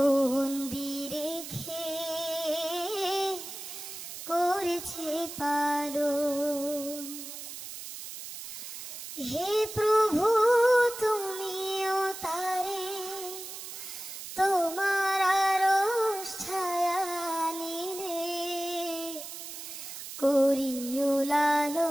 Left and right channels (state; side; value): noise; right; hiss, 10 dB below the sound